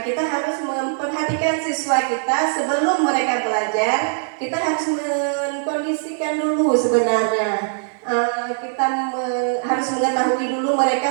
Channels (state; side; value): silent; left; 60 dB below the other